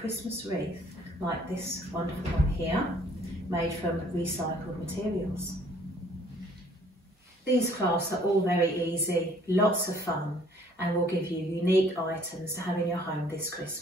wreath like this wonderful one here, made from recycled materials. These crafts are all very easy, lots of fun, and will give you unique items to have in your home this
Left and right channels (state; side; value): normal; both; correlation 0.59